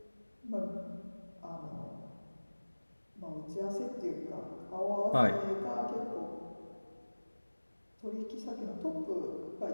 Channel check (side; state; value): both; inverted; correlation -1.00